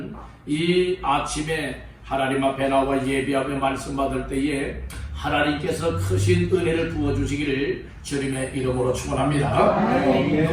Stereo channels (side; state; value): both; identical; correlation 1.00